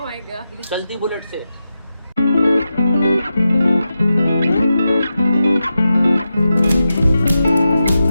गॉड। चलती बुलेट से।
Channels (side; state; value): both; inverted; correlation -0.90